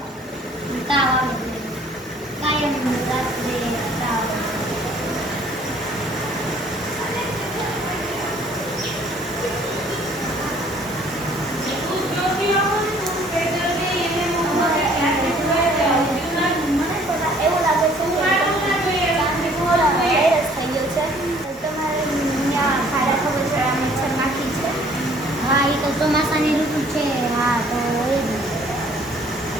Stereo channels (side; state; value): both; normal; correlation 0.57